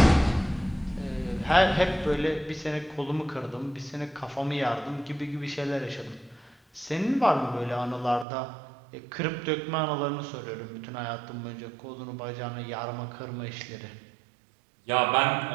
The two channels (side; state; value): left; drops out; at 8.2 s